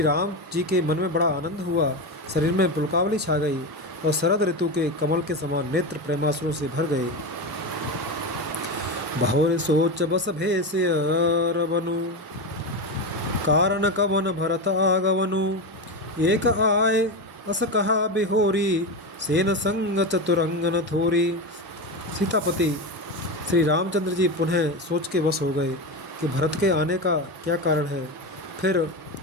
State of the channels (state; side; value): normal; both; correlation 0.17